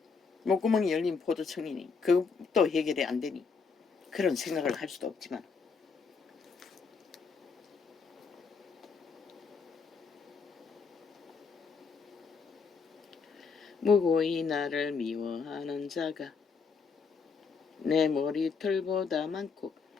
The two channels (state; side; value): quieter; right; 5.1 dB